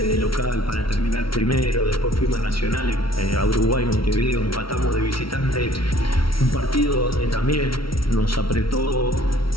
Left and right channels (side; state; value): right; late; 0.74 ms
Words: local para terminar primero, después fuimos a Nacional, a Uruguay, Montevideo, empatamos de visitante, un partido donde también nos apretó,